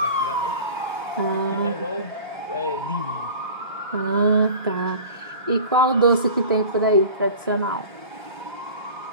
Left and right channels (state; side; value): inverted; both; correlation -0.38